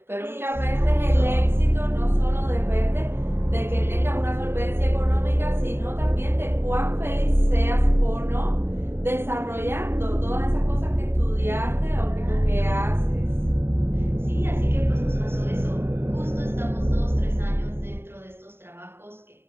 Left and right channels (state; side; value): late; left; 0.11 ms